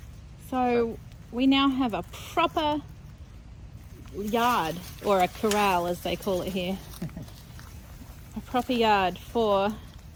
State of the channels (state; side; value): identical; both; correlation 1.00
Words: So we now have a proper yard, or a corral as they call it here. A proper yard for